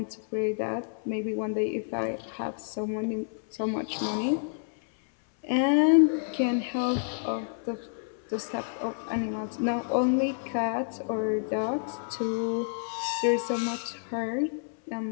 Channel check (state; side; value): silent; right; 59 dB below the other